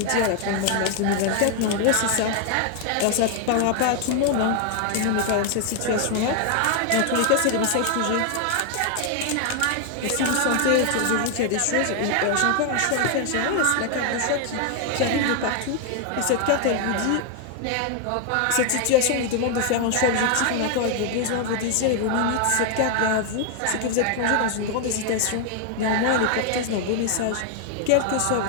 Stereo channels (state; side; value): different; both; correlation 0.00